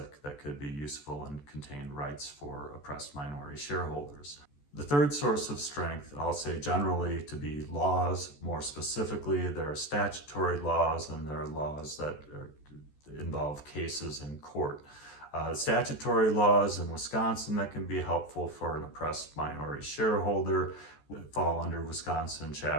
could be useful and contain rights for oppressed minority shareholders. The third source of strength, I'll say generally to be laws. More specifically, there are statutory laws and there are laws that involve cases in court. Statutory laws in Wisconsin that can be helpful for an oppressed minority shareholder fall under Wisconsin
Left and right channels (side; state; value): right; late; 14 ms